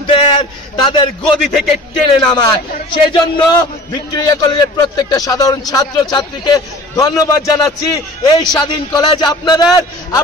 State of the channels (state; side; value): normal; both; correlation 0.42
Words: তাদের গদি থেকে টেনে নামায়। সেই জন্য ভিক্টোরিয়া কলেজের প্রত্যেকটা সাধারণ ছাত্র ছাত্রীকে ধন্যবাদ জানাচ্ছি। এই স্বাধীন কলেজ